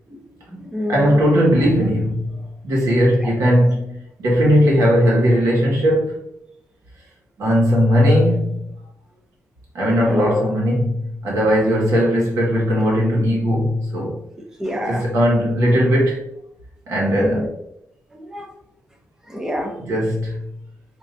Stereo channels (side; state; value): both; normal; correlation 0.82